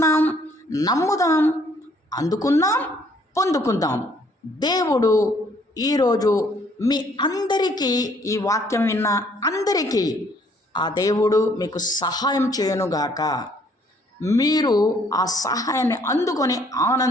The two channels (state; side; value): normal; both; correlation 0.63